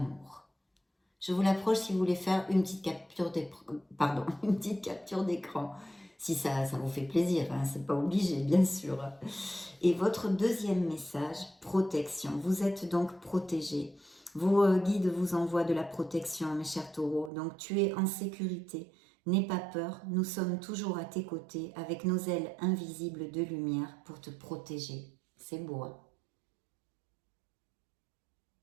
Je vous l'approche si vous voulez faire une petite capture d'écran. Si ça vous fait plaisir, hein, c'est pas obligé, bien sûr. Et votre deuxième message, protection. Vous êtes donc protégé. Vos guides vous envoient de la protection, mes chers taureaux. Donc tu es en sécurité. N'aie pas peur, nous sommes toujours à tes côtés avec nos ailes invisibles de lumière pour te protéger. C'est beau, hein?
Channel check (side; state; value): left; drops out; at 17.3 s